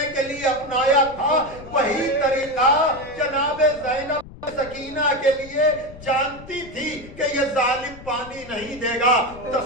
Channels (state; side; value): noise; left; rumble, 17 dB below the sound